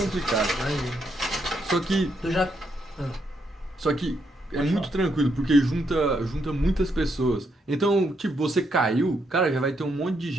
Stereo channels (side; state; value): both; normal; correlation 0.77